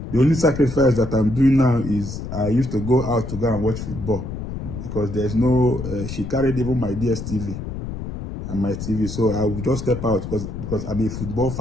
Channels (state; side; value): noise; left; rumble, 7 dB below the sound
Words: The only sacrifice that I'm doing now is I used to go out to go and watch football because there's no, she carried even my DSTV and my TV. So I would just step out because I'm a football